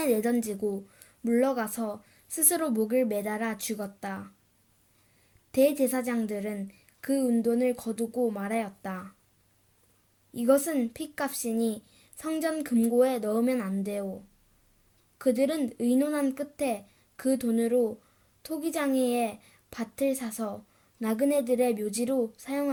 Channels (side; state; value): both; identical; correlation 1.00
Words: 내던지고 물러가서 스스로 목을 매달아 죽었다. 대제사장들은 그 은돈을 거두고 말하였다. 이것은 핏값이니 성전 금고에 넣으면 안 돼요. 그들은 의논한 끝에 그 돈으로 토기장이의 밭을 사서 나그네들의 묘지로